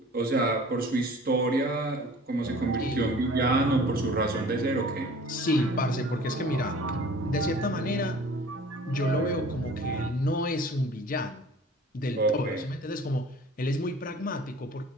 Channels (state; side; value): normal; both; correlation 0.46